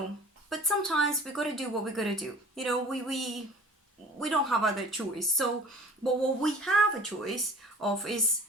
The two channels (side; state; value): both; normal; correlation 0.45